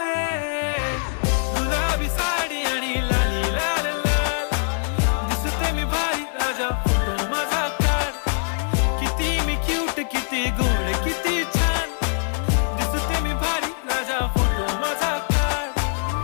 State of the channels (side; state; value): right; silent; 63 dB below the other